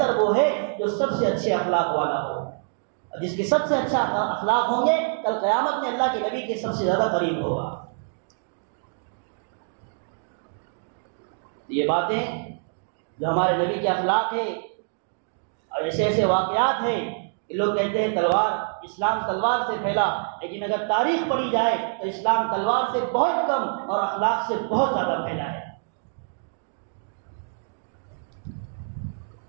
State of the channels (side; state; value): left; silent; digital silence